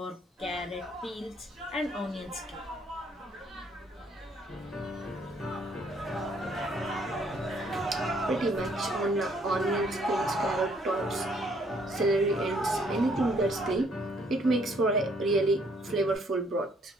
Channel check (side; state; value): both; normal; correlation 0.65